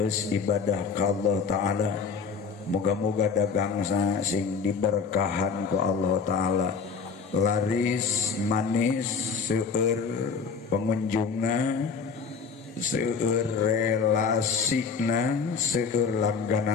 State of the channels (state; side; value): quieter; right; 5.4 dB